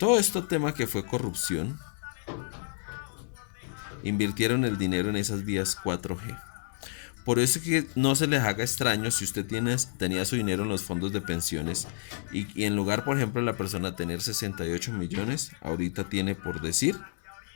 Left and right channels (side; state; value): right; silent; 58 dB below the other